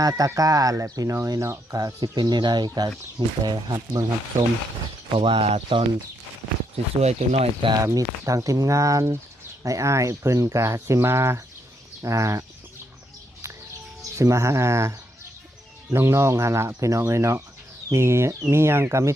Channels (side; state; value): both; normal; correlation 0.77